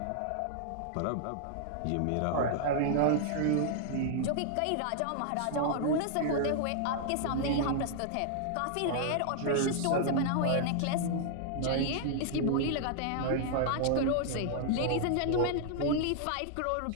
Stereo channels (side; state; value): both; different; correlation -0.01